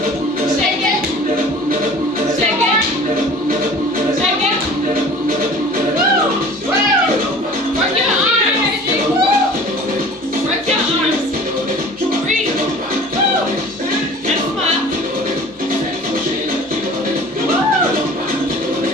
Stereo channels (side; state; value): both; normal; correlation 0.44